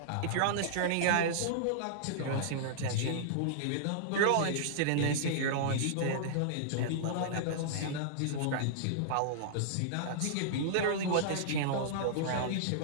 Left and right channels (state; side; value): different; both; correlation -0.02